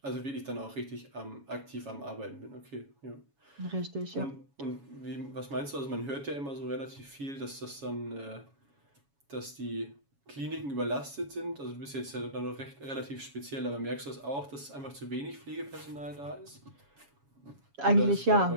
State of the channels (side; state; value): left; late; 7.2 ms